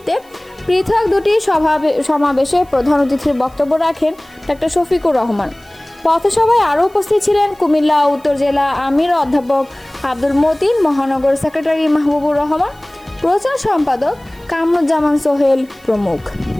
পৃথক 2টি সমাবেশে প্রধান অতিথির বক্তব্য রাখেন ডাক্তার শফিকুর রহমান। পথসভায় আরও উপস্থিত ছিলেন কুমিল্লা উত্তর জেলা আমির অধ্যাপক আব্দুল মতিন, মহানগর সেক্রেটারি মাহবুবুর রহমান, প্রচার সম্পাদক কামরুজ্জামান সোহেল প্রমুখ।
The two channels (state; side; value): noise; right; hiss, 29 dB below the sound